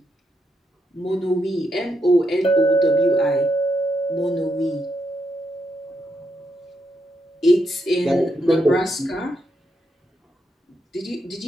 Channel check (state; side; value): normal; both; correlation 0.81